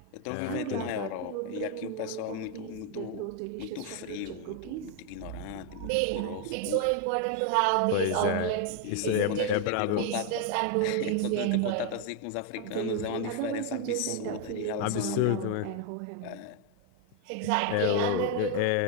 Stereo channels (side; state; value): both; different; correlation 0.01